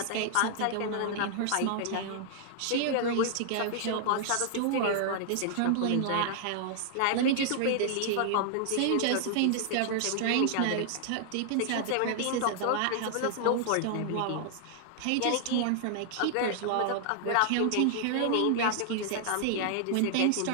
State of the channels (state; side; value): different; both; correlation -0.01